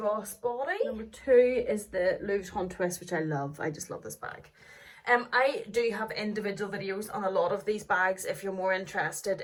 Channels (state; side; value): identical; both; correlation 1.00